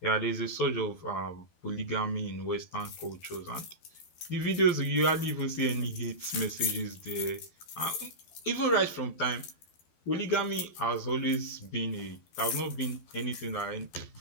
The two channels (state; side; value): late; right; 12 ms